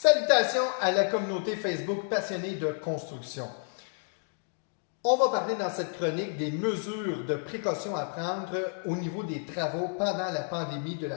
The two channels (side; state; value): right; silent; digital silence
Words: Salutations à la communauté Facebook passionnée de construction. On va parler dans cette chronique des mesures de précaution à prendre au niveau des travaux pendant la pandémie de